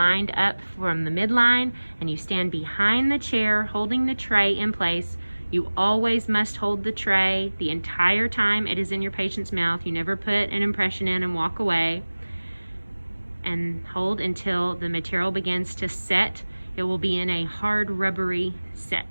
up from the midline, and you stand behind the chair holding the tray in place. You always must hold the tray the entire time it is in your patient's mouth. You never put an impression in and walk away. And hold until the material begins to set. It will be in a hard rubbery set.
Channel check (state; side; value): inverted; both; correlation -1.00